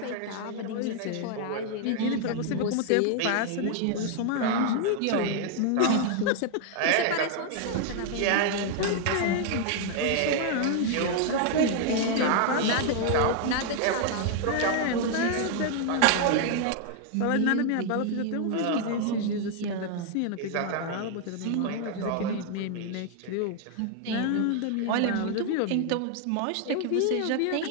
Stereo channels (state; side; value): different; both; correlation 0.00